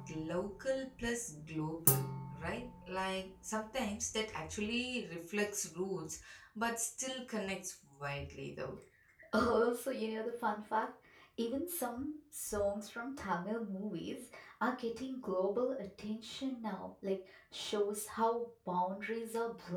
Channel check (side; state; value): both; identical; correlation 1.00